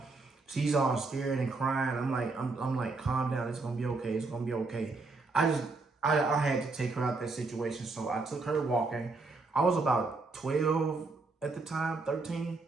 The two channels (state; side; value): quieter; left; 3.7 dB